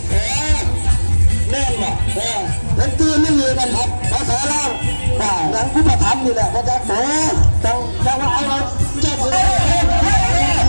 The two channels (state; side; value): inverted; both; correlation -1.00